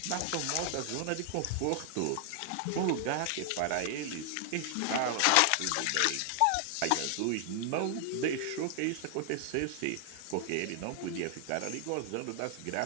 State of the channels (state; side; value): different; both; correlation 0.00